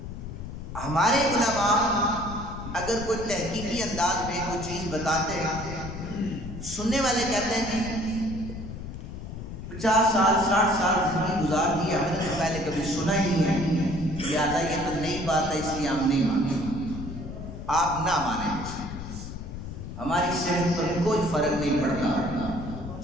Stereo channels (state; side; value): noise; left; rumble, 9 dB below the sound